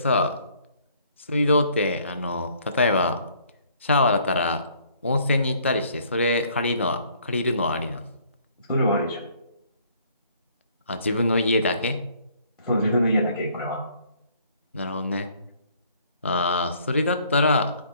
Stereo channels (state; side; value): inverted; both; correlation -0.61